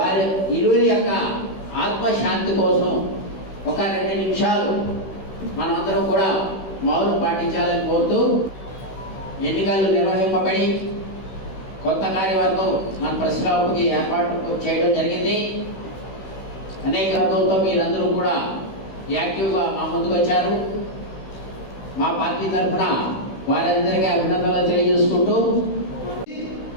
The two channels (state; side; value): late; right; 16 ms